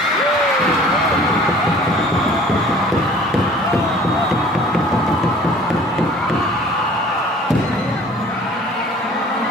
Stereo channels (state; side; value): normal; both; correlation 0.49